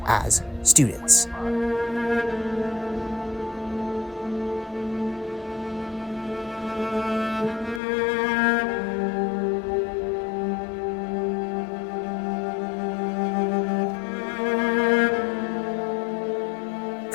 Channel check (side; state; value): right; drops out; at 7.8 s